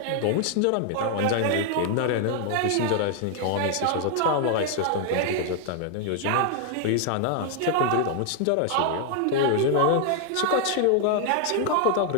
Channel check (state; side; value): different; both; correlation 0.00